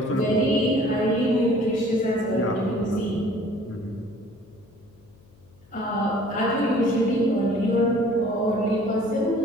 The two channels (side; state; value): left; noise; hum, 28 dB below the sound